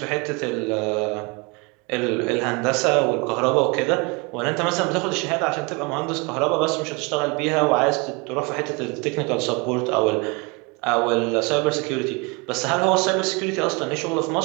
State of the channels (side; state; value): left; quieter; 29.2 dB